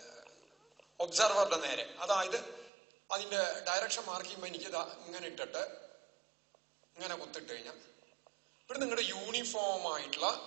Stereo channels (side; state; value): left; drops out; at 2.7 s